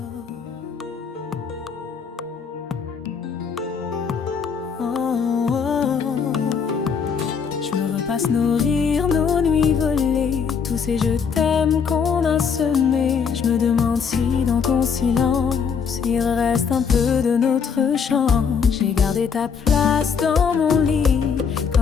Je me repasse nos rires, nos nuits volées, tous ces je t'aime qu'on a semés. Je me demande si dans ton silence il reste un peu de notre chant. J'ai gardé ta place dans mon lit,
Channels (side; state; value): right; quieter; 6.4 dB